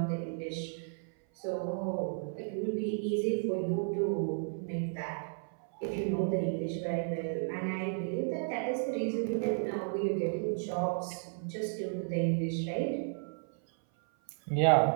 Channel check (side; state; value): left; silent; 55 dB below the other